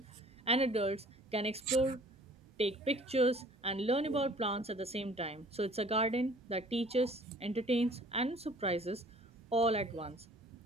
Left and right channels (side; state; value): both; normal; correlation 0.52